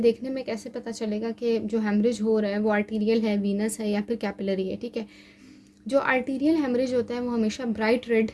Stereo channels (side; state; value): both; identical; correlation 1.00